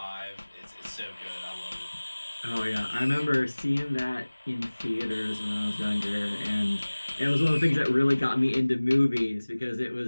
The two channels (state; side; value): inverted; both; correlation -1.00